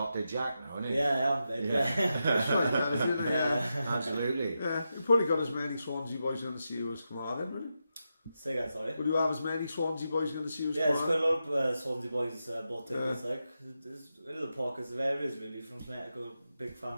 Jack now, aren't you? Yeah, I am, mate. That's right, man, isn't it? Yeah. Absolutely. Yeah, you probably got as many Swansea boys going to see you as Carmarthen, wouldn't you? Say that, sorry. Would you have as many Swansea boys going to see you as It's quite Carmarthen? a lot of Swansea boys bought tickets, like. There's little pockets of areas really, from Connecticut, big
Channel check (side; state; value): both; inverted; correlation -0.88